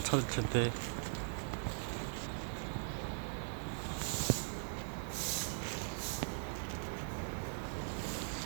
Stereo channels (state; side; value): silent; left; digital silence